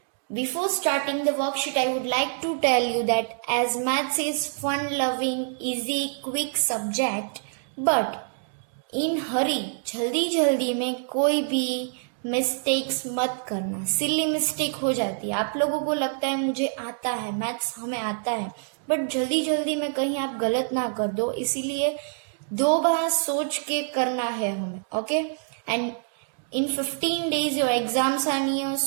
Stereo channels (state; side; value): silent; left; digital silence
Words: Before starting the worksheet, I would like to tell you that as maths is fun-loving, easy, quick subject, but in hurry, जल्दी में कोई भी mistakes मत करना. Silly mistake हो जाती है. आप लोगों को लगता है मुझे आता है, मैथ्स हमें आता है, बट जल्दी में कहीं आप गलत ना कर दो. इसीलिए 2 बार सोच के करना है हमें. Okay, and in 15 days your exams are near,